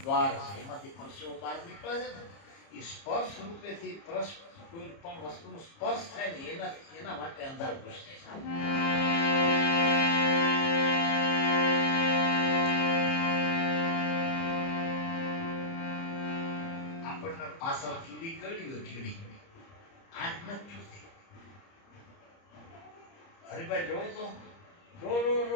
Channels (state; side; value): late; right; 30 ms